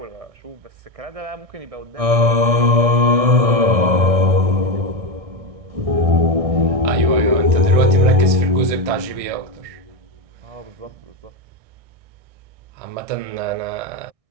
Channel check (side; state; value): left; late; 1.6 ms